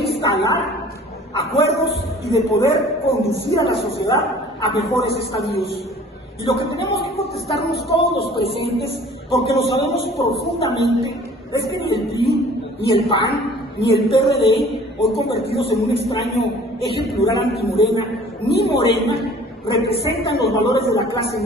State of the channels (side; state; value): both; normal; correlation 0.50